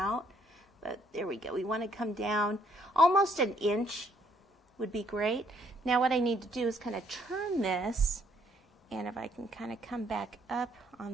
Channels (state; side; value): normal; both; correlation 0.66